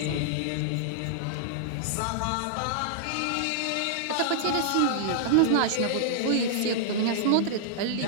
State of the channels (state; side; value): different; both; correlation -0.01